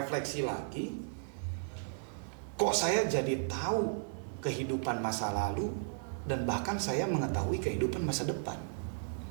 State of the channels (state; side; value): silent; left; digital silence